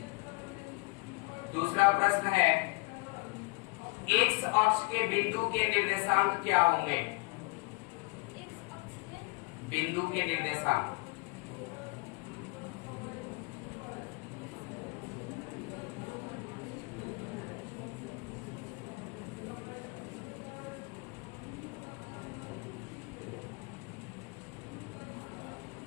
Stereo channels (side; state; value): right; quieter; 28.9 dB